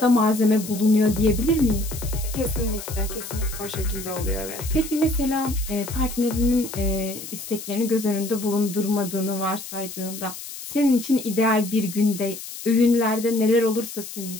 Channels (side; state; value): left; noise; hiss, 11 dB below the sound